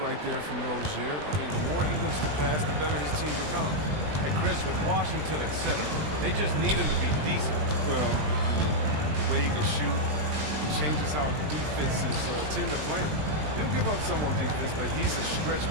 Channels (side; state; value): left; late; 20 ms